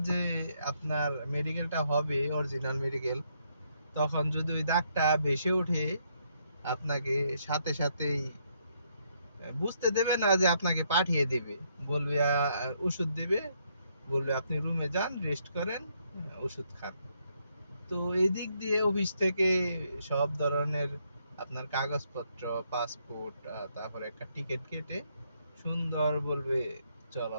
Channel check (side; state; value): both; inverted; correlation -0.74